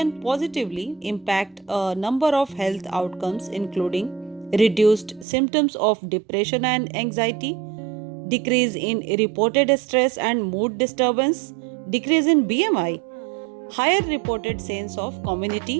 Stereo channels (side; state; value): left; drops out; at 5.2 s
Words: positively impact a number of health outcomes, including reduced symptoms of depression and anxiety, decrease in reported stress and mood disturbance, decrease in BMI, higher reported sense of